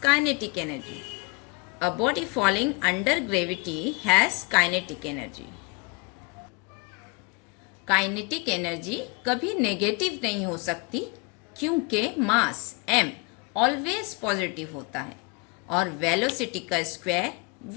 kinetic energy. A body falling under gravity has kinetic energy. Kinetic energy कभी नेगेटिव नहीं हो सकती, क्योंकि मास m ऑलवेज पॉजिटिव होता है और वेलोसिटी का स्क्वायर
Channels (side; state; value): right; quieter; 29.1 dB